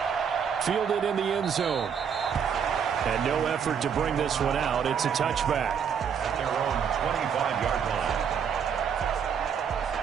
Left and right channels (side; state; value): left; quieter; 7.4 dB